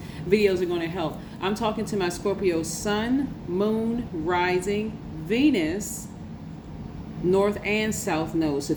videos are going to help. I'm talking to my Scorpio sun, moon, rising, Venus, north and south node. So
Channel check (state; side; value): identical; both; correlation 1.00